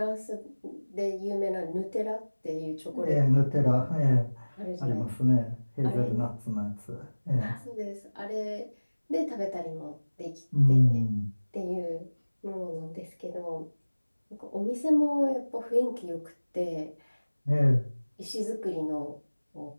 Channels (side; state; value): both; inverted; correlation -1.00